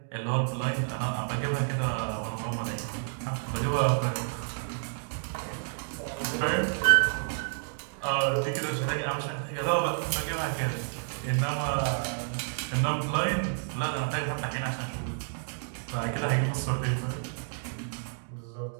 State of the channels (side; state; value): left; silent; digital silence